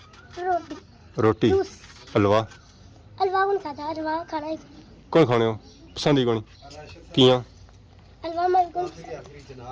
रोटी रोटी हलवा हलवा कौन खाता है हलवा खाना है कौन खाने हो पसंद ही कौन किया हलवा मत कौन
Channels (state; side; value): identical; both; correlation 1.00